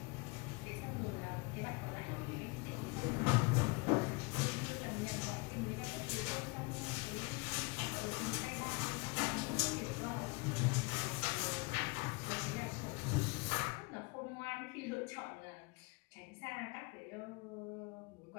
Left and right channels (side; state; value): right; quieter; 27.8 dB